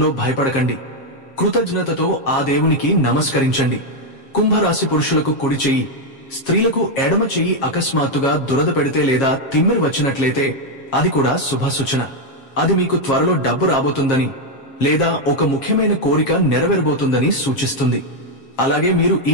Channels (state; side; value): late; right; 7.4 ms